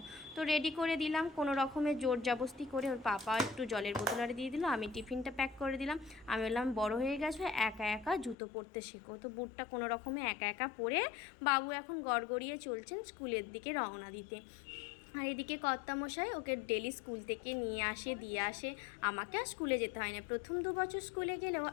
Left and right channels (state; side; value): drops out; right; at 8.3 s